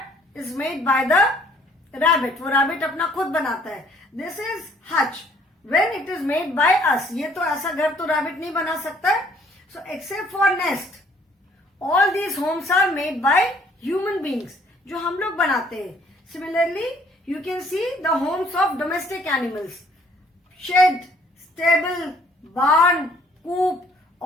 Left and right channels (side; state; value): both; normal; correlation 0.61